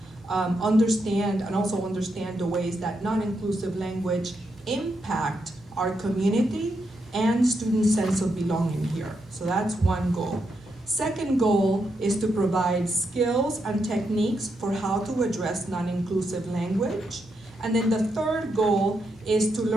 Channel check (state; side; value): normal; both; correlation 0.82